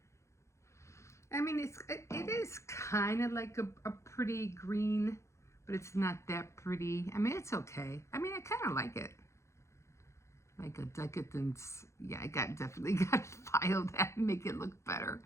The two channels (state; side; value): late; right; 0.14 ms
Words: I mean, it is kind of like a pretty green, but it's not that pretty. I mean, it's okay. I mean, I kind of like it. Like a decadence. Yeah, I definitely got to file that and make it look better.